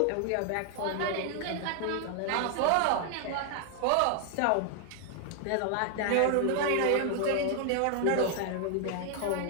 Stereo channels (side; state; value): both; different; correlation 0.00